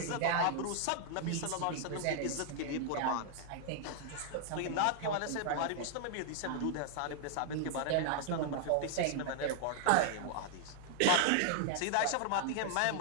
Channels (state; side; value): different; both; correlation 0.00